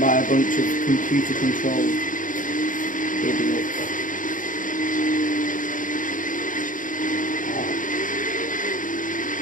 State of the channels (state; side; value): late; right; 0.38 ms